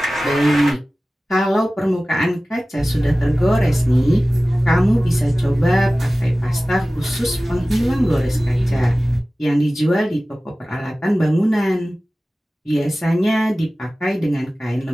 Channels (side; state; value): both; normal; correlation 0.97